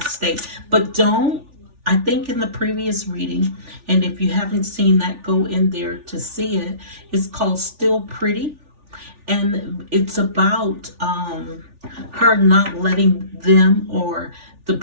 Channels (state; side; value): late; left; 3.4 ms